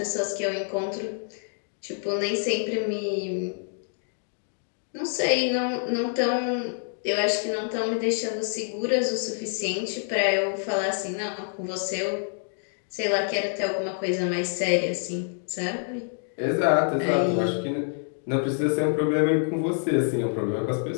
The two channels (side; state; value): right; silent; 58 dB below the other